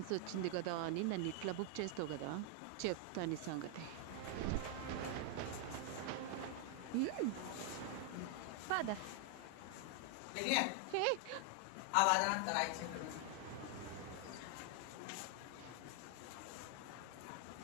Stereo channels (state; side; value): different; both; correlation 0.00